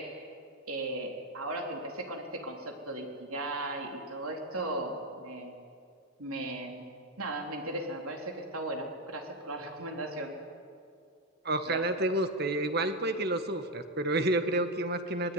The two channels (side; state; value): both; normal; correlation 0.08